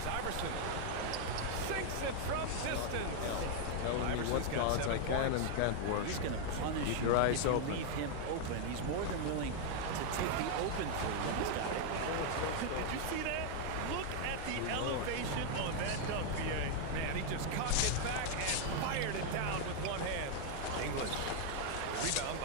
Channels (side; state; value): both; different; correlation 0.00